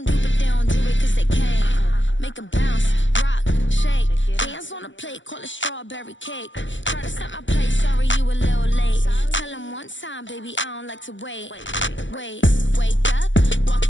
do, but they don't do it cause they can't. Make them bounce, rock, shake. Dance on the plate, call it strawberry cake. Try to set my place, sorry you a little late. Tell them one time, baby, I don't like to wait. Wake up,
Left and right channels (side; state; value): right; late; 0.55 ms